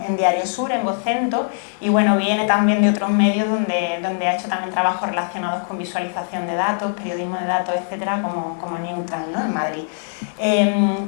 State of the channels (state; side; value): silent; right; 65 dB below the other